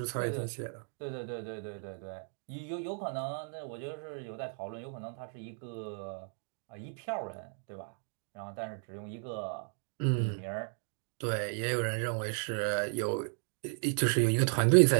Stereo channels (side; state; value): left; silent; 55 dB below the other